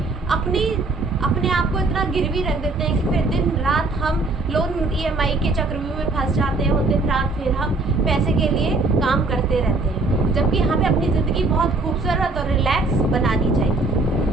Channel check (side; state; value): left; quieter; 3.4 dB